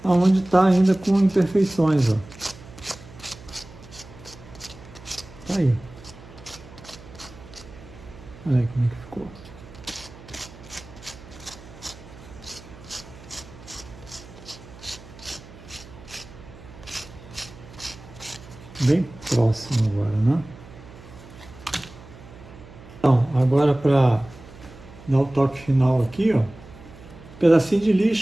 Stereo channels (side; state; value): right; noise; hum, 19 dB below the sound